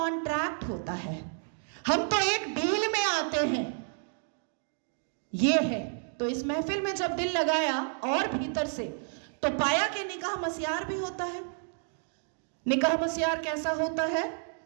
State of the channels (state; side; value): silent; left; 57 dB below the other